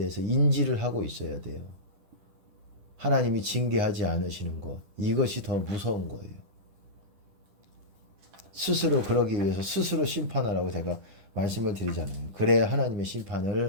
인지를 하고 있어야 돼요. 하나님이 징계하지 않으시는 것, 이것이 더 무서운 거예요. 스스로 그러기 위해서 스스로 심판하라고 제가 말씀을 드리잖아요. 그래야 하나님의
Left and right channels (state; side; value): late; left; 10 ms